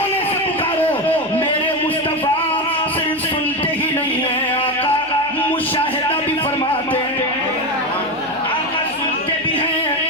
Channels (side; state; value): left; noise; hum, 28 dB below the sound